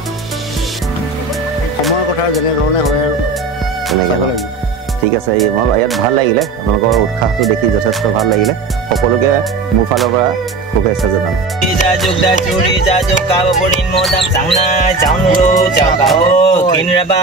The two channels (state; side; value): quieter; left; 3.9 dB